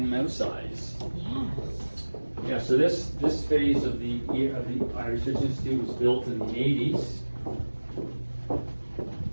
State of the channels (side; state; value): both; inverted; correlation -1.00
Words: mouse size. Yeah. So this phase of the Irish Research Institute was built in the 80s.